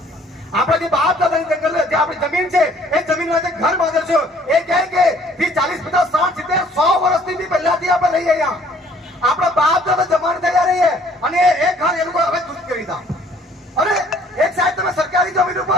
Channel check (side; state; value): both; normal; correlation 0.58